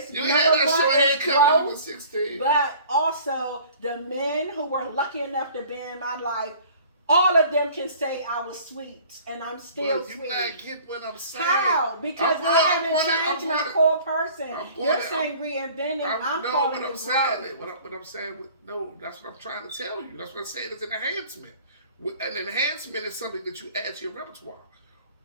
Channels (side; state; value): both; inverted; correlation -0.49